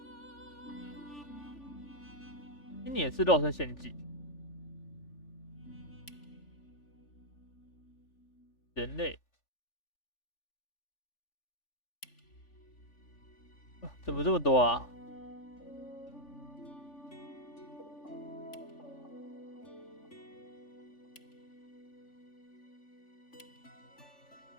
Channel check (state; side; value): late; right; 3.4 ms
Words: 经理也是肉身献祭。人类，怎么这么多啊？